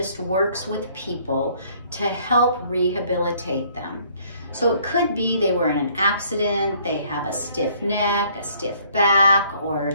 works with people to help rehabilitate them. So it could be they were in an accident, they have a stiff neck, a stiff back, or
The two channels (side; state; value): both; inverted; correlation -0.61